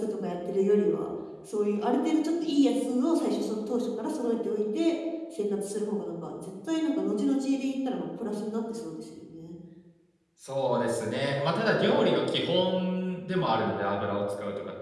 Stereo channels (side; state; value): both; identical; correlation 1.00